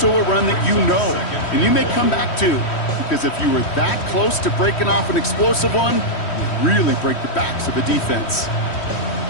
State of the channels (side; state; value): right; late; 3.1 ms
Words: a run that you know, and you may come back to. Because if you were that close to breaking off an explosive one, you really break the backs of a defense.